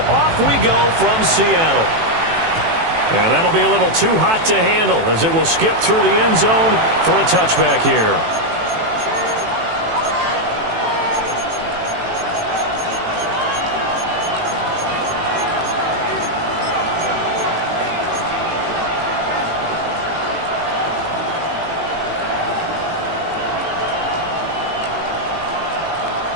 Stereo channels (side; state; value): left; late; 18 ms